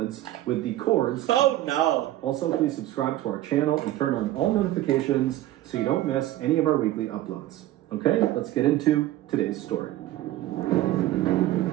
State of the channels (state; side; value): quieter; left; 14.8 dB